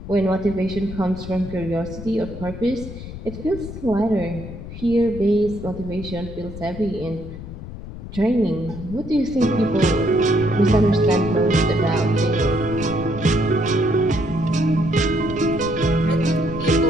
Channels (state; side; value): noise; left; rumble, 11 dB below the sound